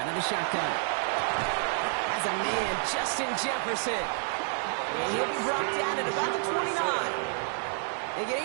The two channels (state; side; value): silent; left; 58 dB below the other